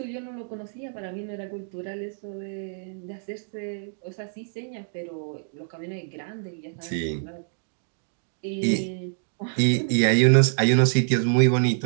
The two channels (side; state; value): left; silent; digital silence